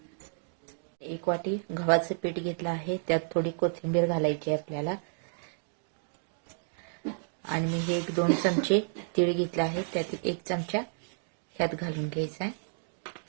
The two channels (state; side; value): silent; left; digital silence